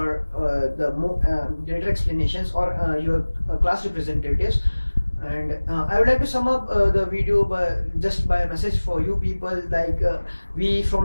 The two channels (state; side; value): inverted; both; correlation -1.00